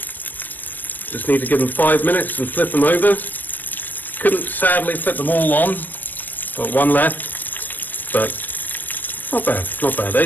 need to give them 5 minutes and flip them over. Couldn't sadly fit them all on, got one left, but not bad, not bad.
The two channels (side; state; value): right; late; 0.086 ms